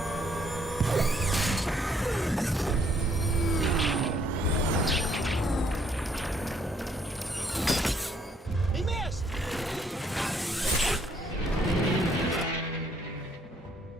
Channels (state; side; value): normal; both; correlation 0.68